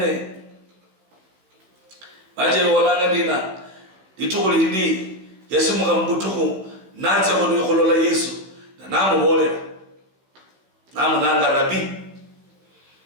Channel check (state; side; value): late; left; 16 ms